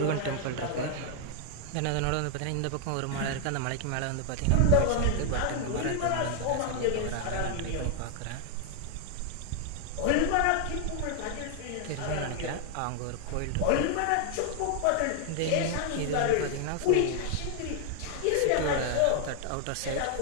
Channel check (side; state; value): both; different; correlation 0.00